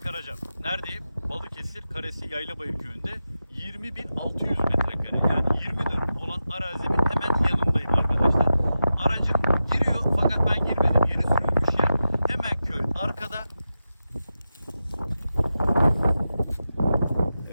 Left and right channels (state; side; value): inverted; both; correlation -0.91